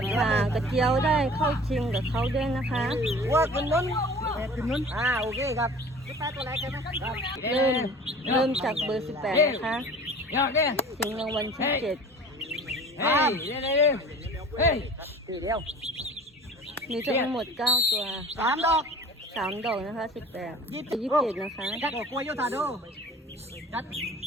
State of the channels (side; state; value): both; normal; correlation 0.43